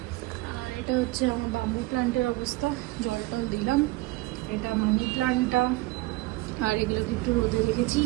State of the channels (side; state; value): left; quieter; 20.3 dB